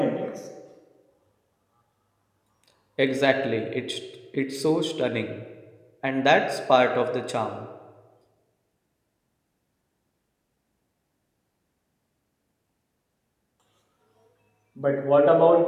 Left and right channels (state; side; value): identical; both; correlation 1.00